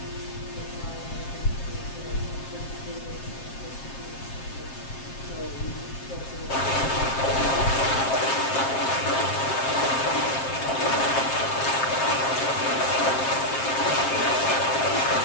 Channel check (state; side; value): late; right; 7.5 ms